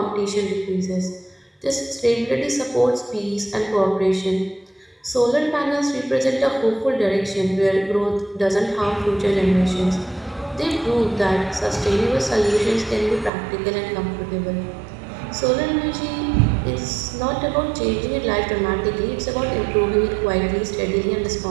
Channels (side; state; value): left; drops out; at 13.3 s